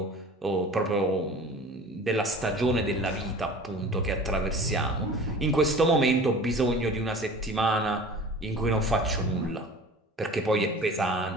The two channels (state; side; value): normal; both; correlation 0.41